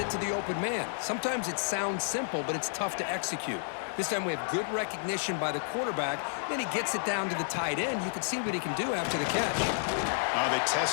to the open man. Sometimes it sounds simple, but it's tough to execute. This time we have good recognition by the quarterback. Then he gets it down to the tight end. You can see what he can do after the catch. They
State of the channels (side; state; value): right; silent; 57 dB below the other